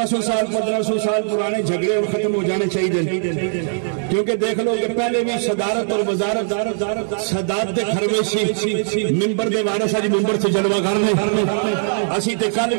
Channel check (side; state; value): left; silent; digital silence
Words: سال 1500 سال پرانے جھگڑے اور ختم ہو جانے چاہیے کیونکہ دیکھ لو کہ پہلے بھی صدارت اور وزارت صدارت دے خرویشی ممبر دے وارث اج ممبر سے جلوہ کرنے اسی تے کل